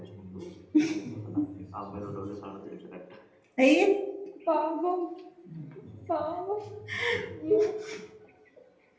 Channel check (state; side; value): identical; both; correlation 1.00